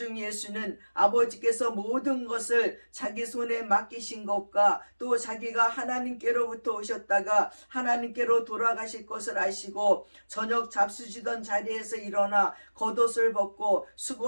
예수는 아버지께서 모든 것을 자기 손에 맡기신 것과 또 자기가 하나님께로부터 오셨다가 하나님께로 돌아가실 것을 아시고 저녁 잡수시던 자리에서 일어나 겉옷을 벗고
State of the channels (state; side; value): inverted; both; correlation -1.00